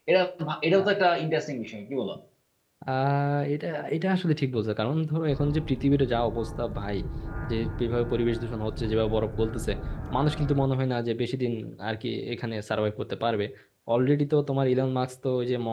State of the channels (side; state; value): both; identical; correlation 1.00